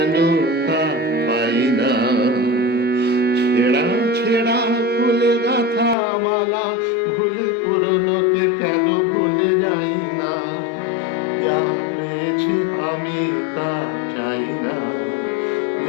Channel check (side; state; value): right; drops out; at 6.0 s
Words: তা পাই না। ছেঁড়া ছেঁড়া ফুলে গাঁথা মালা ভুলে পুরনোকে কেন ভুলে যাই না? যা পেয়েছি আমি তা চাই না,